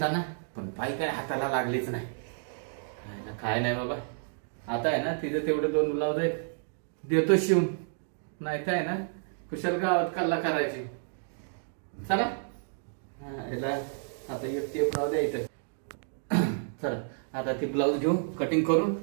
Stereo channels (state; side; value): silent; left; digital silence